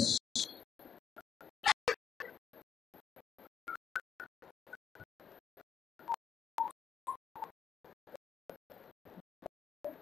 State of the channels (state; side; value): quieter; right; 7.4 dB